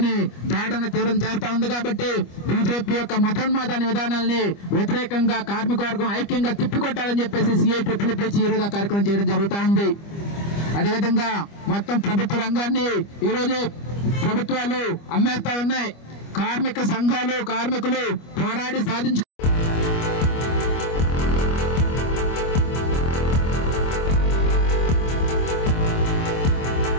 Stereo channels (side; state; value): right; late; 25 ms